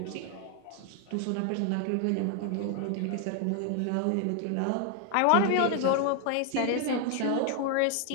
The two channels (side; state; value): both; different; correlation 0.00